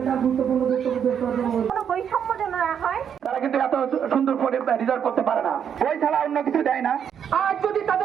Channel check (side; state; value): left; quieter; 8.2 dB